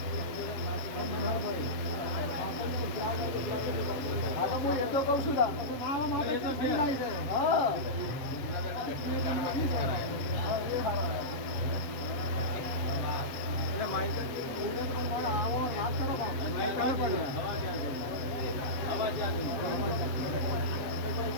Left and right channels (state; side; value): late; right; 7.3 ms